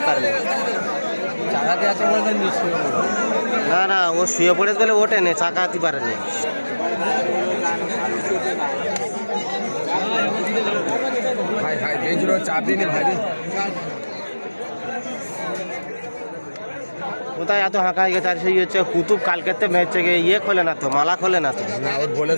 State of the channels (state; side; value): inverted; both; correlation -1.00